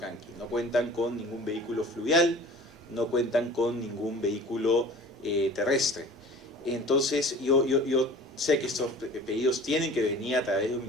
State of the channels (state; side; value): normal; both; correlation 0.43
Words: No cuentan con ningún vehículo fluvial, no cuentan con ningún vehículo terrestre. Entonces yo sé que estos pedidos tienen que venir a través de los